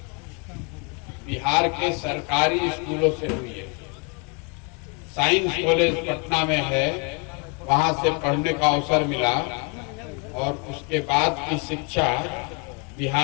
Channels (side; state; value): right; quieter; 33.5 dB